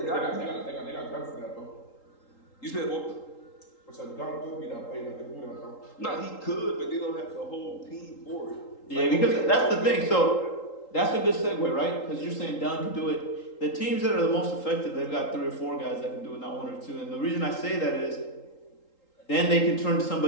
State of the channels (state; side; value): late; right; 3.8 ms